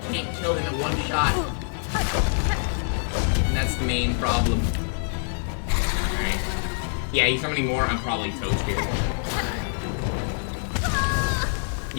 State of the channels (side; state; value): right; silent; digital silence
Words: can't kill him in one shot. And that's the main problem. Alright. Yeah, he's summoning more. I'm probably toast here.